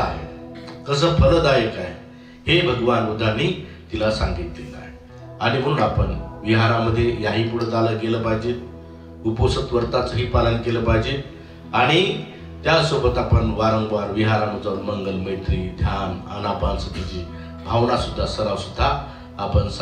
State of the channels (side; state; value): both; identical; correlation 1.00